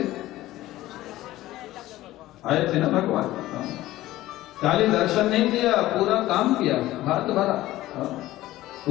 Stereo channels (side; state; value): right; quieter; 16.0 dB